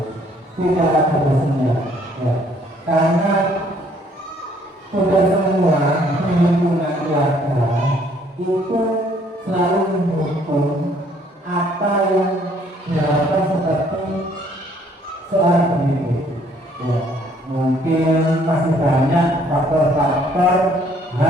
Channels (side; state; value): both; normal; correlation 0.63